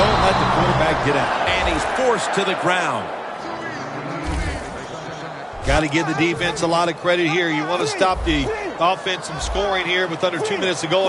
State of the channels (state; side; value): identical; both; correlation 1.00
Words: let the quarterback get out. And he's forced to the ground. Got to give the defense a lot of credit here. You want to stop the offense from scoring here with under 2 minutes to